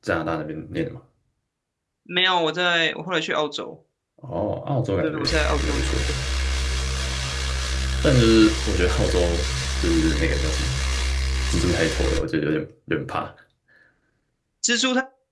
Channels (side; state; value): both; identical; correlation 1.00